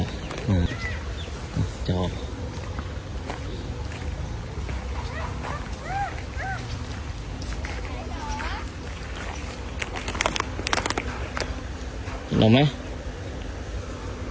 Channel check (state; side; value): identical; both; correlation 1.00